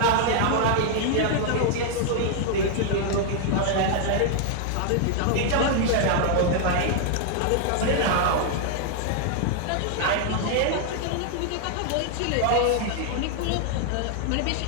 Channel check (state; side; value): different; both; correlation 0.00